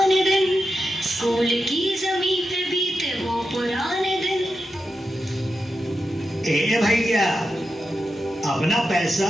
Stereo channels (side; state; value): both; normal; correlation 0.88